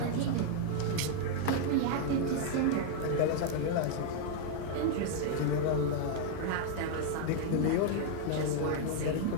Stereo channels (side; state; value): both; different; correlation 0.00